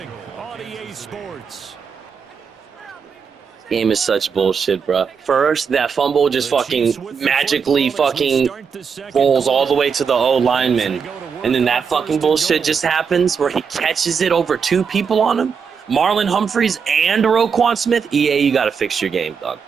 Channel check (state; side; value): quieter; left; 6.2 dB